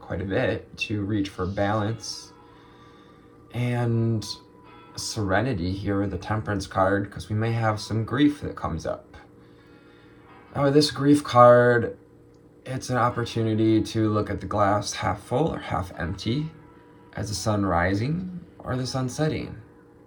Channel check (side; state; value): both; identical; correlation 1.00